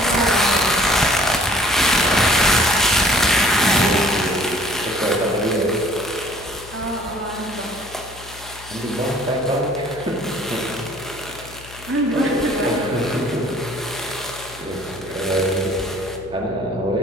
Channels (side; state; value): left; noise; hum, 19 dB below the sound